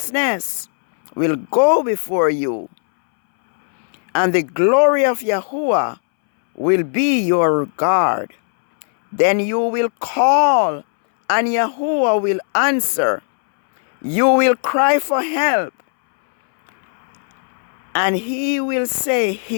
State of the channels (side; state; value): right; silent; 66 dB below the other